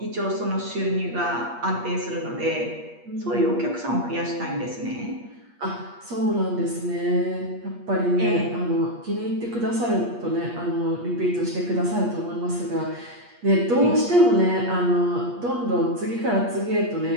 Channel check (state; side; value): late; left; 8.4 ms